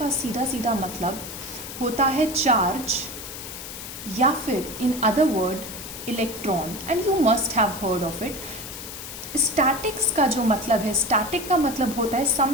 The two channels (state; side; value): noise; left; hiss, 10 dB below the sound